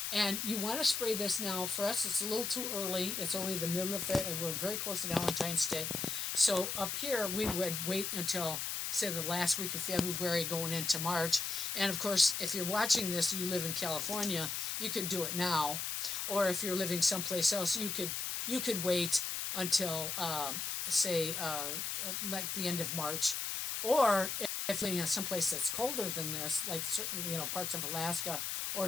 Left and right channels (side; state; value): left; noise; hiss, 2 dB below the sound